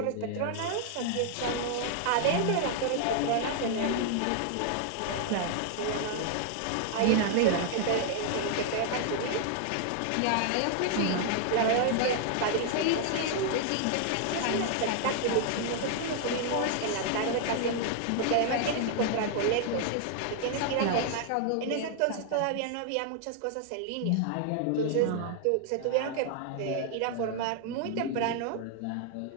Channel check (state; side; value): different; both; correlation 0.00